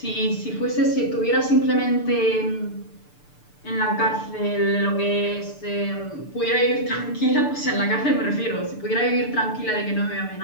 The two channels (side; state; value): right; late; 6.8 ms